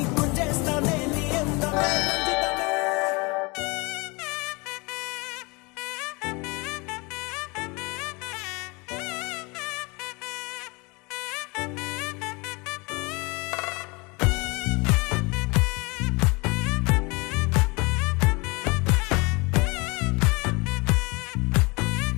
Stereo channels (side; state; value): right; quieter; 27.2 dB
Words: గుంజేస్తానే నీ అందమే